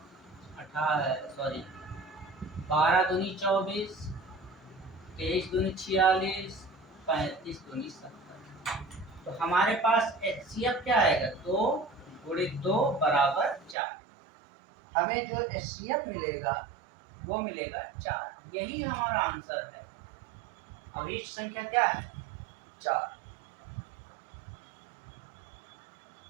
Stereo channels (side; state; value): left; drops out; at 13.8 s